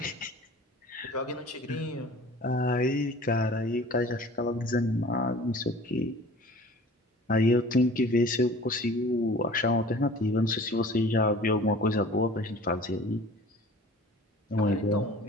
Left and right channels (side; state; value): both; normal; correlation 0.45